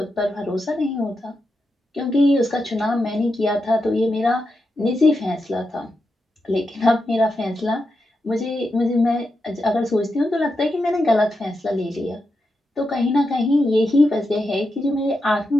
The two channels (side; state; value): both; normal; correlation 0.87